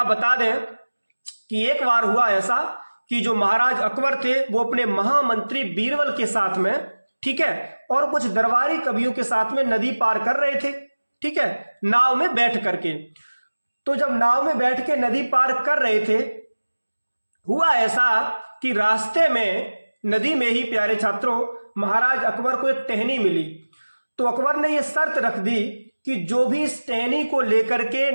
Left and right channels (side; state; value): both; inverted; correlation -1.00